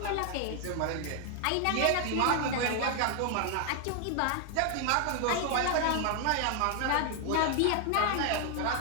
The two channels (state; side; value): different; both; correlation 0.00